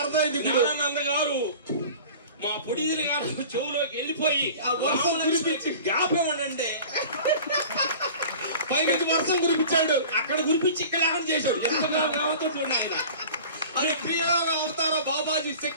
గారు మా పొడిదిని గారు చెవులోకి వెళ్ళిపోయి వర్షం కురిపించి జ్ఞాపకమండి పైకి వర్షం కురిపించాడు. అక్కడ గురిపించి ఇక్కడ లేకుండా చేశాడు. ఎంత కావతో చూడండి ఆయన. అది ప్రియోగ అవతారం బాబాజీ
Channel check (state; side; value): inverted; both; correlation -0.40